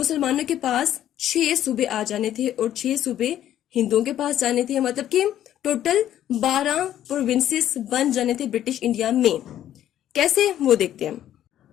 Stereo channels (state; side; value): quieter; right; 11.6 dB